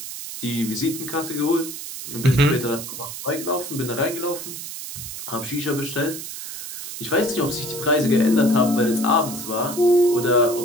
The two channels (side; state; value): right; noise; hiss, 9 dB below the sound